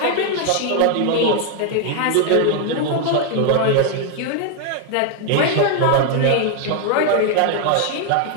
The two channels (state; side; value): different; both; correlation 0.00